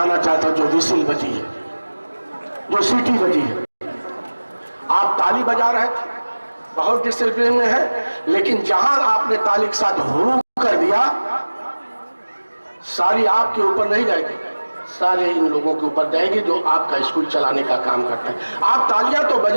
चाहता हूँ, जो विसिल बजी है, जो सीटी बजी है। आप ताली बजा रहे थे, बहुत डिसिप्लिन में है, लेकिन जहां आपने ताली के साथ हुरू कर दिया, सारी आपके ऊपर नहीं जाएगी, सारे इन लोगों के ऊपर जाएगी जो आपका स्कूल चलाने का काम करते हैं। आप तालियां तो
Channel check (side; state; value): both; inverted; correlation -1.00